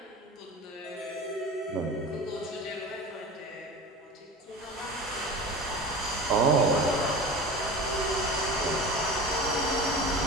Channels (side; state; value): both; normal; correlation 0.33